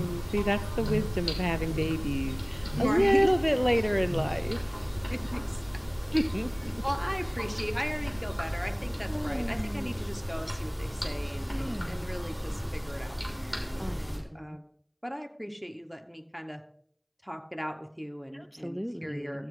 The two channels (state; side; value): identical; both; correlation 1.00